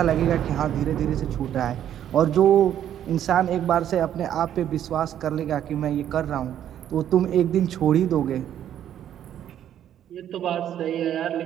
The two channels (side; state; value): left; quieter; 10.6 dB